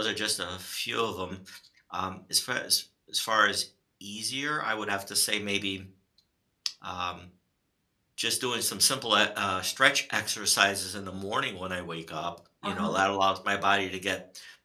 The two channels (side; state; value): both; identical; correlation 1.00